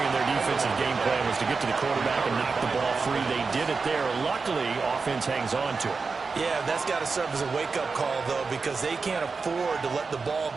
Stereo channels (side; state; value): left; quieter; 4.6 dB